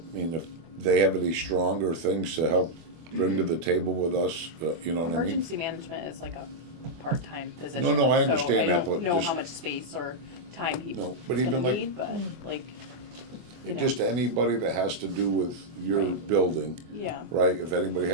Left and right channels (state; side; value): late; left; 24 ms